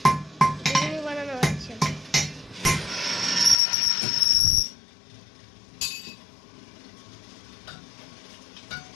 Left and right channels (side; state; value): right; drops out; at 3.6 s